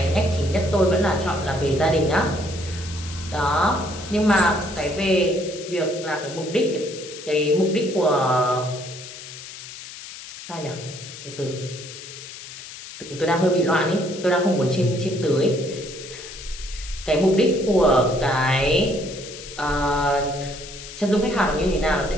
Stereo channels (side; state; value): left; noise; hiss, 13 dB below the sound